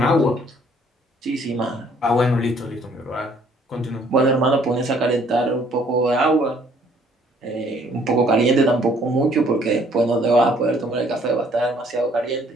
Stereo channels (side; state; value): both; normal; correlation 0.61